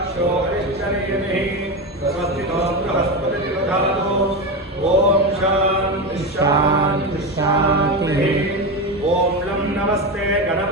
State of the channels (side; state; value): both; normal; correlation 0.17